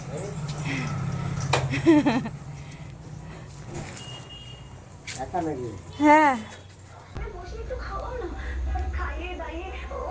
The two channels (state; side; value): identical; both; correlation 1.00